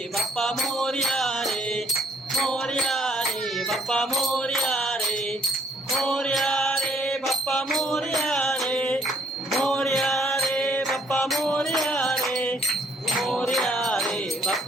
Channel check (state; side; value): normal; both; correlation 0.65